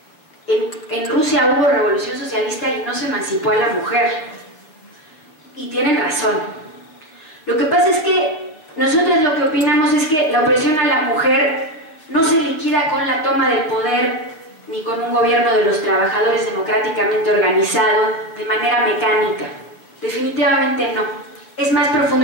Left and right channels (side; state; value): right; late; 6.6 ms